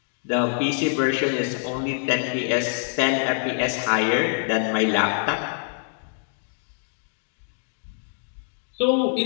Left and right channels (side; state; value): right; silent; digital silence